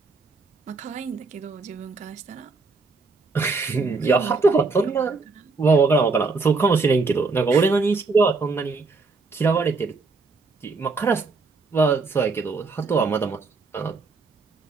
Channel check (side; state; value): left; quieter; 4.0 dB